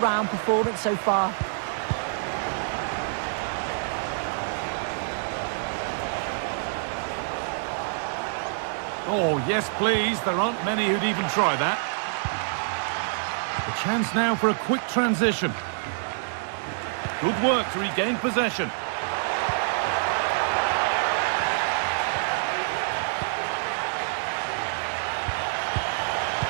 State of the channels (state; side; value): silent; left; digital silence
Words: performance so far. Oh, yes, please. There aren't many who'd even try that. A chance now for a quick transition. Good work to regain possession.